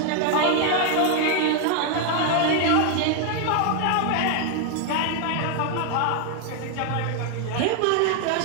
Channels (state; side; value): different; both; correlation 0.00